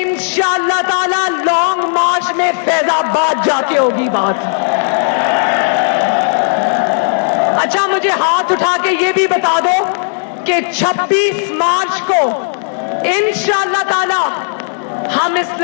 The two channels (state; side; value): silent; right; 71 dB below the other